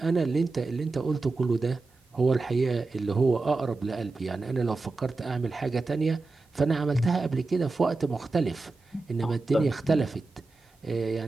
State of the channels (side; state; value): left; quieter; 3.6 dB